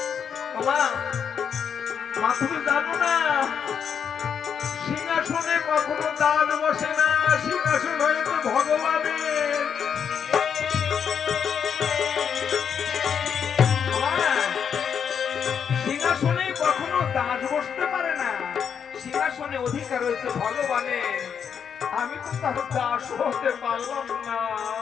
মা তুমি জানো না সিংহাসনে কখনো দান বসে না, সিংহাসন হয়েছে ভগবানের। সিংহাসনে কখনো দাস বসতে পারে না, সিংহাসনে অধিকার হয়েছে ভগবানের। আমি তো তার দাস হতে পারলাম না।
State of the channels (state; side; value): quieter; right; 7.4 dB